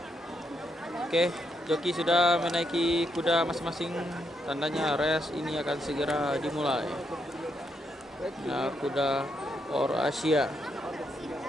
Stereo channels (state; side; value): normal; both; correlation 0.79